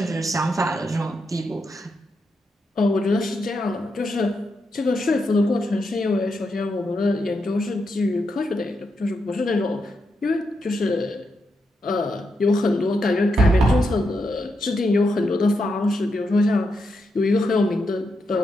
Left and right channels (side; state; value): both; normal; correlation 0.84